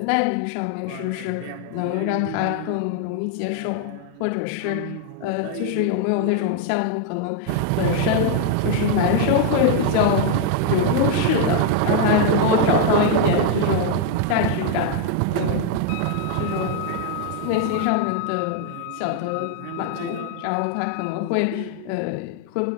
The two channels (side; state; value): both; different; correlation 0.00